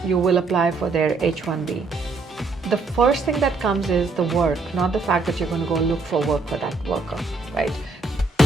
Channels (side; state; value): left; quieter; 3.8 dB